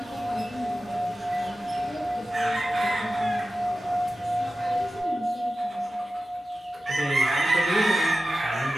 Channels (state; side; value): normal; both; correlation 0.94